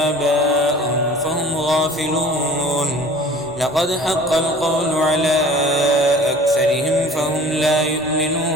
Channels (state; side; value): normal; both; correlation 0.46